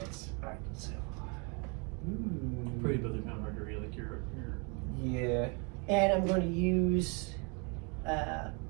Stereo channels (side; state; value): left; quieter; 33.9 dB